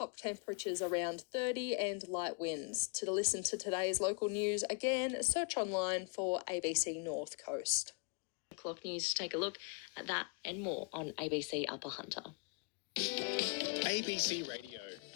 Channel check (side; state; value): right; quieter; 35.2 dB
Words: temperatures around 30 and light winds. To listen to today's local news, again, search online for ABC North Coast. Clock News to take a look at that and more on ABC Upper Hunter. ABC